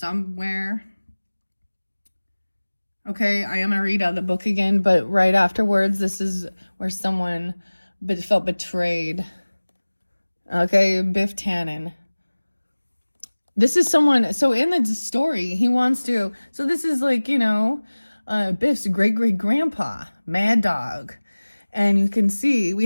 Okay, I am going to read out the book again, but right afterwards, this is where someone felt betrayed. Okay, Biff Tannen. This is someone, so in the story, he wants to, so this is like, you know, Biff's great-great-grandpa, Mad Dog. And you can see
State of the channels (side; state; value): both; inverted; correlation -1.00